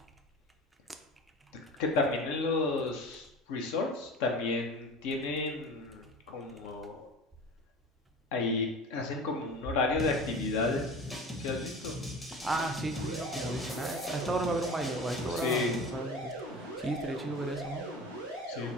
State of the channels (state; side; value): normal; both; correlation 0.35